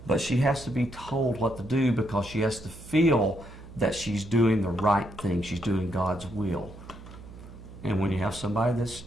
but she has to be told what to do because she has to feel that she's doing the right thing. She's doing God's will. And when you have somebody that's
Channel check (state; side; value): noise; right; hum, 16 dB below the sound